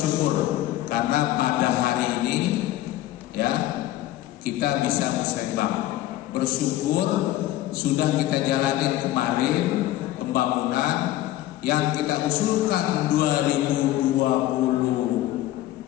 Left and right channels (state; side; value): quieter; right; 14.7 dB